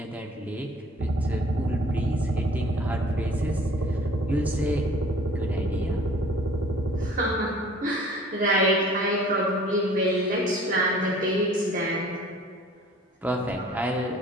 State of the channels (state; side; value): normal; both; correlation 0.51